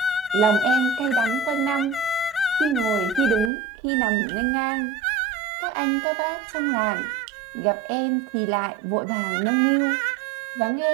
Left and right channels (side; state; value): left; drops out; at 3.5 s